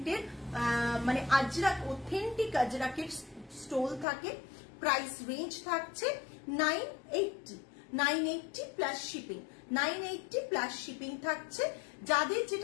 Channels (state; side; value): drops out; right; at 4.0 s